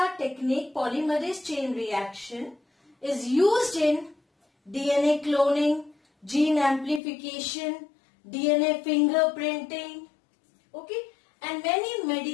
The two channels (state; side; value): drops out; right; at 7.0 s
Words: technique, polymerase chain reaction, is used in DNA cloning, gene amplification, DNA fingerprinting, okay, and many